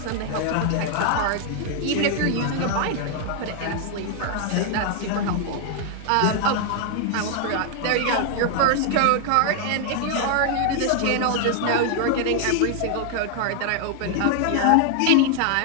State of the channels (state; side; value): different; both; correlation 0.00